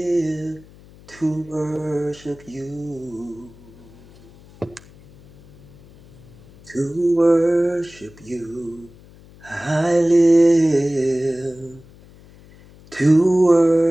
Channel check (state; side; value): noise; left; hum, 24 dB below the sound